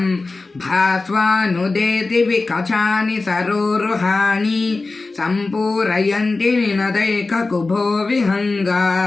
भास्वानुदेति विकचानि सरोरुहाणि सम्पूरयन्ति निनदैककुभो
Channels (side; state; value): right; quieter; 3.6 dB